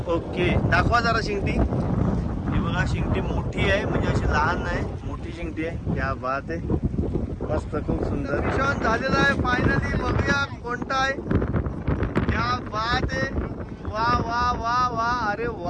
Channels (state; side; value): identical; both; correlation 1.00